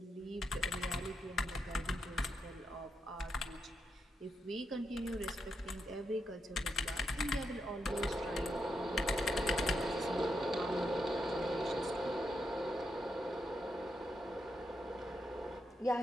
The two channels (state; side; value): normal; both; correlation 0.83